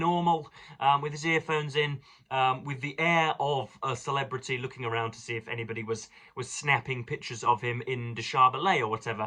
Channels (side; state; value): both; identical; correlation 1.00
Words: with his earphones in, with the air of a celebrity, looking around to see if anybody was snapping pictures of him in Deshabelais or